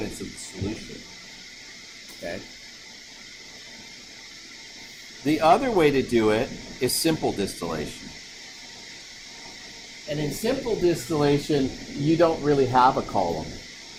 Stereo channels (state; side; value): identical; both; correlation 1.00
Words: of the solution. Okay? The other way to do it is simple distillation. And in simple distillation, you don't really have a column.